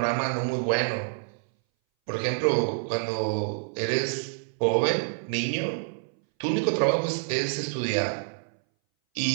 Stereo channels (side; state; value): left; silent; 59 dB below the other